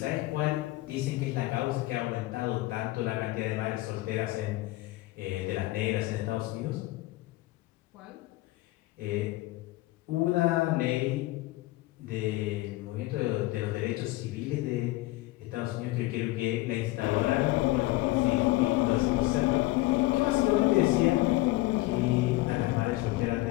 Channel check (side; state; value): right; quieter; 19.1 dB